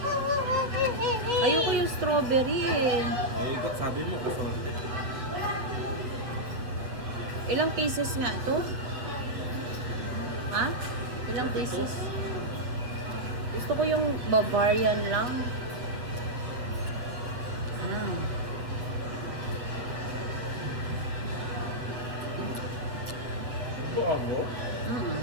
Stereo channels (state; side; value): late; left; 8.2 ms